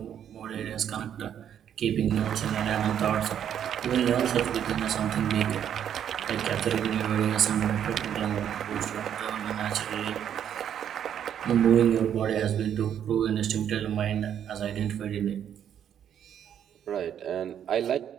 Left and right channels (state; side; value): quieter; left; 9.4 dB